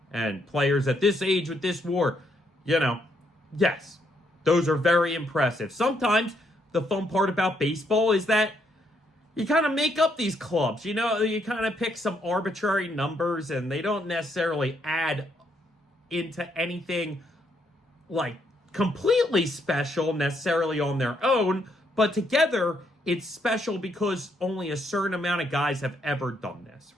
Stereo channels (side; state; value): both; normal; correlation 0.74